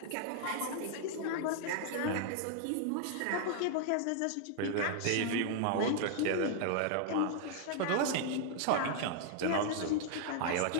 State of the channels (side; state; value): both; different; correlation 0.00